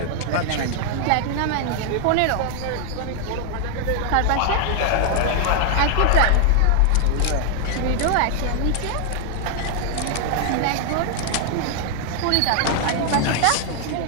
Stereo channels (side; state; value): both; different; correlation 0.00